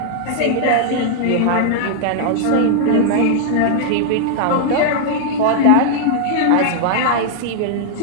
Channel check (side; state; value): both; different; correlation 0.00